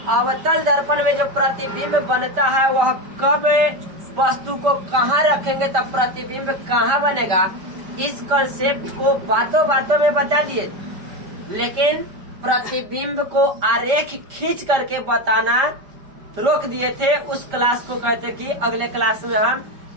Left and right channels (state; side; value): late; left; 5.1 ms